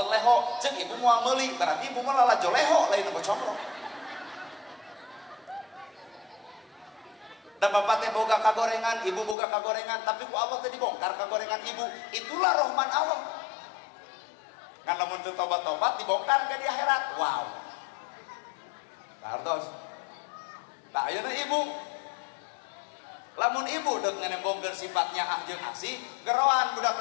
leho jeung ibu moal meuli berarti ibu mah lalajo leho lain nu combro. Dan bapak teh boga kagorengan, ibu boga kagorengan, tapi ku Allah teh dibongkar kagorengan ibu. Itulah rahman Allah. Kan lamun teu tobat-tobat dibongkar ke di akhirat. Wow. Kartos. Tak ayeuna ibu. Lamun ibu deuk nganembongkeun sifatnya ah jeung asih, geroan budak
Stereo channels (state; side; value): drops out; right; at 9.3 s